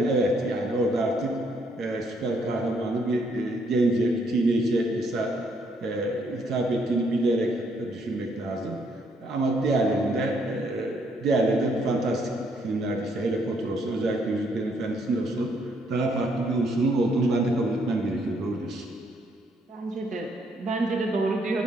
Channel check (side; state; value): both; normal; correlation 0.70